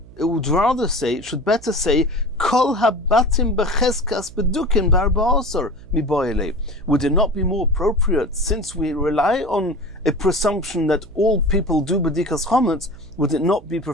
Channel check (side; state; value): right; noise; hum, 21 dB below the sound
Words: would rather say, it should better say, Kol habatim becheskas bedukin barba'asar miboyle. Would it not be more appropriate, since we rely on a presumption that all people do bedikas chometz, would it not be